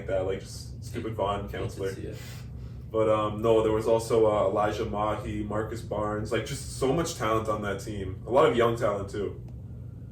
that, like just stupid Vaughn counselor. Hate to see it. But no, there was also Elijah Mahi, Marcus Barnes, like just so much talent on that team. A lot of young talent too.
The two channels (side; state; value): both; identical; correlation 1.00